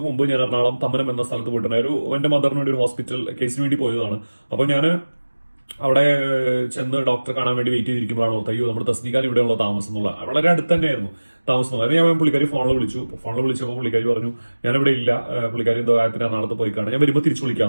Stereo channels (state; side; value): inverted; both; correlation -1.00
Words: മുമ്പ് ഞാൻ എറണാകുളം തമ്മനം എന്ന സ്ഥലത്ത് പോയിട്ടുണ്ടായിരുന്നു. എന്റെ മദറിന് വേണ്ടി ഒരു ഹോസ്പിറ്റൽ കേസിന് വേണ്ടി പോയതാണ്. അപ്പോൾ ഞാൻ അവിടെ ചെന്ന് ഡോക്ടറെ കാണാൻ വേണ്ടി വെയിറ്റ് ചെയ്തിരിക്കുമ്പോഴാണ് ഓർത്ത്, അയ്യോ നമ്മുടെ തസ്നിക്കാൻ ഇവിടെയുള്ള താമസം എന്നുള്ള വളരെ അടുത്ത് തന്നെയായിരുന്നു താമസം. അതിന് ഞാൻ പുള്ളിക്കാരി ഫോണിൽ വിളിച്ചപ്പോൾ പുള്ളിക്കാരി പറഞ്ഞു ഞാനിവിടെ ഇല്ല, പുള്ളിക്കാരി എന്തോ കാര്യത്തിന് എറണാകുളത്ത് പോയി കാണാൻ, ഞാൻ വരുമ്പോൾ തിരിച്ചു